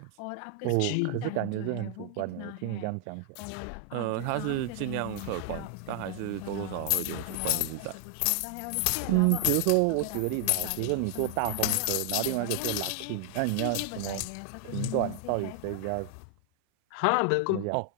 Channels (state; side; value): different; both; correlation 0.00